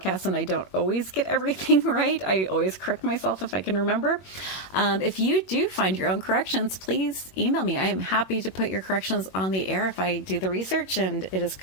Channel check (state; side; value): late; right; 21 ms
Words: and I don't always get everything right. I always correct myself if I can remember. If you do find your own corrections, please email me. I am happy to put your corrections on the air if I do the research and it is